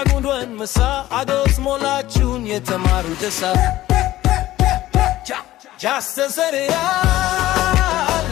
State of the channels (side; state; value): right; quieter; 15.4 dB